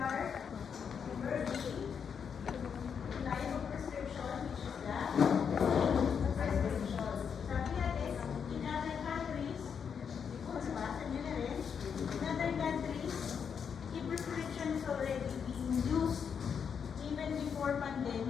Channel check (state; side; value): quieter; right; 7.0 dB